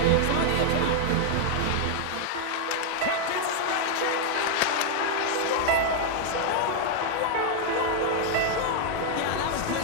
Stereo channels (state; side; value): different; both; correlation 0.00